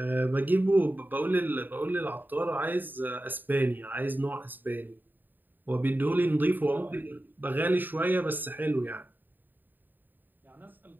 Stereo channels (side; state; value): left; late; 0.090 ms